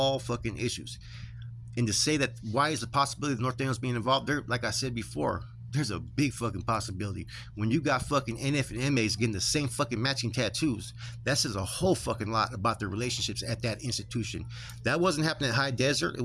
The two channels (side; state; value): both; identical; correlation 1.00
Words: issues. And to say that why is the possibility of North Daniels being involved there, like I said before, There's a big fucking possibility. When you got fucking NF and MAs getting the same fucking matching tattoos, that says a whole fucking lot about their relationships at that institution. That wasn't happening at High Desert. It